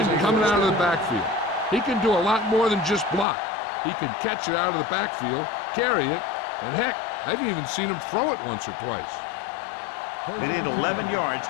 coming out of the backfield. He can do a lot more than just block. He can catch it out of the backfield, carry it, and heck, I've even seen him throw it once or twice. They need 11 yards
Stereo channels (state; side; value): drops out; right; at 3.2 s